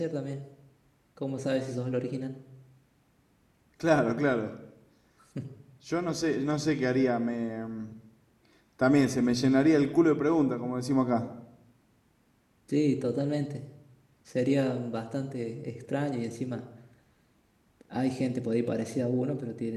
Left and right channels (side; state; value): both; identical; correlation 1.00